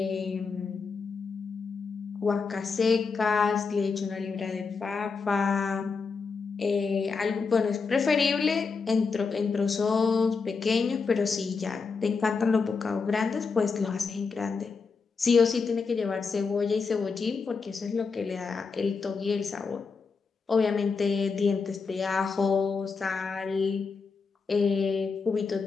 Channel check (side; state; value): right; quieter; 4.9 dB